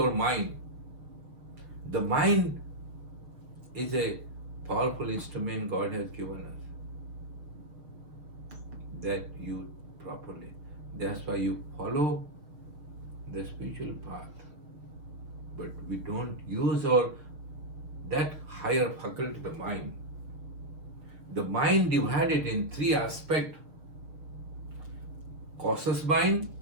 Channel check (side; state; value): left; late; 6.4 ms